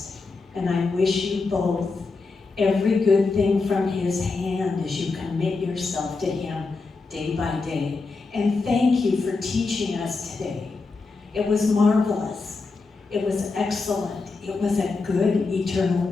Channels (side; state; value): right; quieter; 4.0 dB